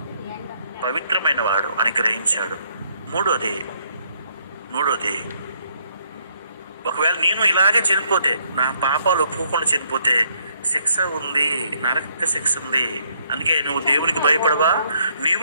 పవిత్రమైన వాడు అని గ్రహించాడు. మూడోది, ఒకవేళ నేను ఇలాగే చనిపోతే, నా పాపాలు ఒప్పుకోకుండా చనిపోతే శిక్ష ఉంది, నరక శిక్ష ఉంది. అందుకే నువ్వు దేవునికి భయపడవా,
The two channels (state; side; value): inverted; both; correlation -0.69